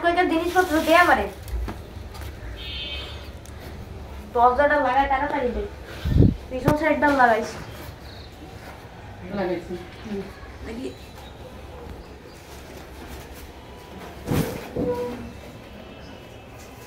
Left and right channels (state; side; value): identical; both; correlation 1.00